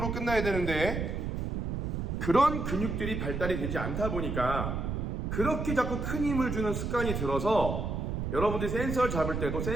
끝나야 되는데 그런 근육들이 발달이 되지 않다 보니까 그렇게 자꾸 큰 힘을 주는 습관이 들어서 여러분들이 센서를 잡을 때도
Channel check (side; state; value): right; noise; rumble, 2 dB below the sound